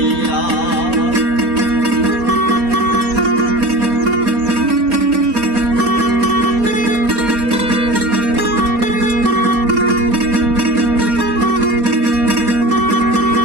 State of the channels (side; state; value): left; late; 4.3 ms